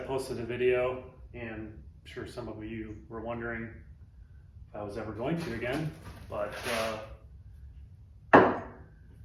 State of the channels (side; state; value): both; identical; correlation 1.00